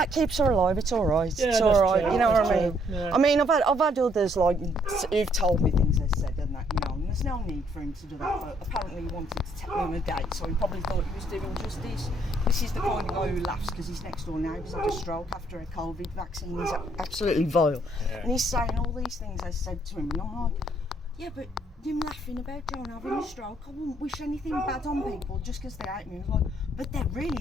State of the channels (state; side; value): normal; both; correlation 0.68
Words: keeps her alive, it's alright. Yeah, it's alright, true, you know what I true. mean? Yeah. I mean, I've had others like who've told me things they said and that, you know, and there's no need for him to do that, but apparently he wanted to take me on a date, so he probably thought he was doing justice. This is the kind of guy who laughs because his next door neighbour's had a stroke after a COVID vaccine. He's absolutely vile. Yeah. And he's saying all these things I said to him, and I'm like, yeah, but him laughing about John having a stroke, I wouldn't wish anything bad on people just because they hate me. I was like, but they